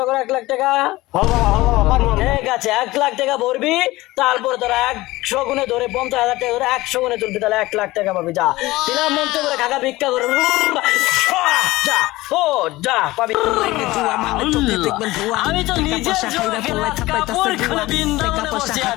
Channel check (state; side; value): quieter; right; 18.9 dB